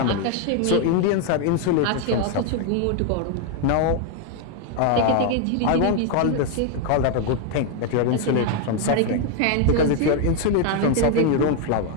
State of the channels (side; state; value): both; different; correlation 0.01